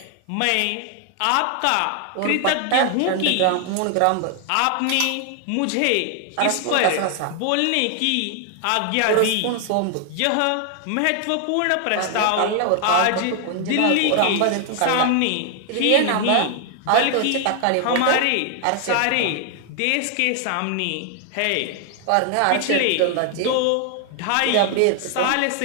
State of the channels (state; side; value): different; both; correlation 0.00